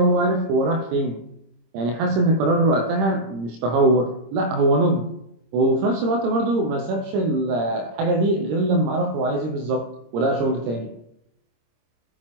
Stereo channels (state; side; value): late; left; 26 ms